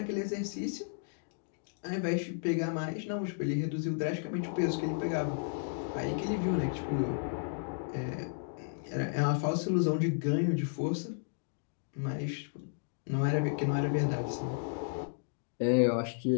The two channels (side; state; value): right; silent; digital silence